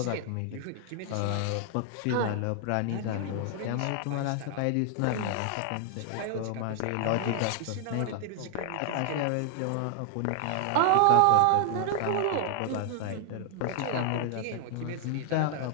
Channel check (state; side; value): different; both; correlation 0.00